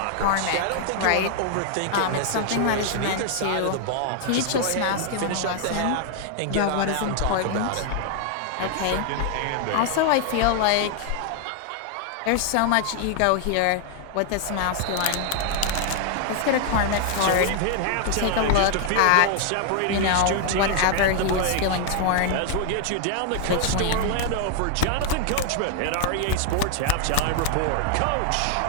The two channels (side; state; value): both; different; correlation 0.00